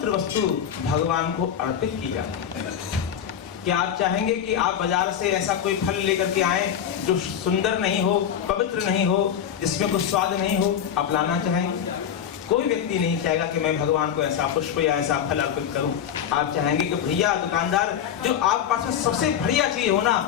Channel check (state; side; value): quieter; right; 8.9 dB